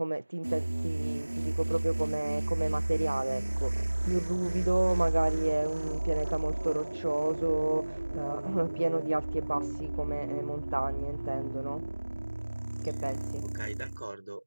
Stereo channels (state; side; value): inverted; both; correlation -1.00